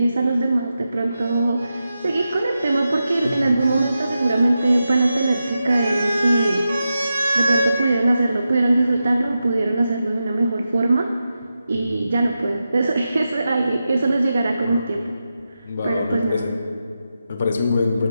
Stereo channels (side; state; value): both; inverted; correlation -0.90